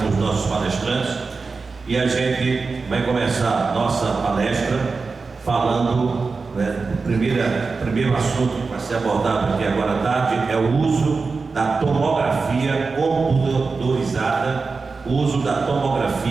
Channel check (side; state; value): left; quieter; 4.4 dB